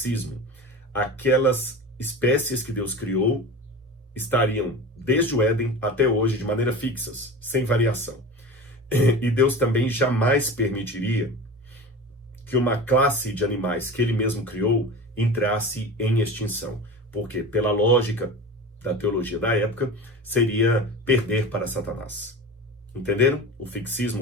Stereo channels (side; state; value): both; normal; correlation 0.32